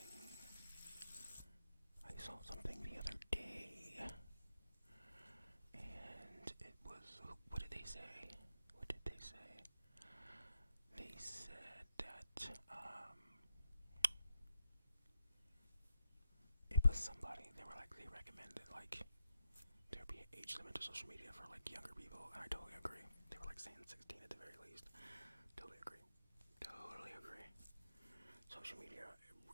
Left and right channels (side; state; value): both; inverted; correlation -0.84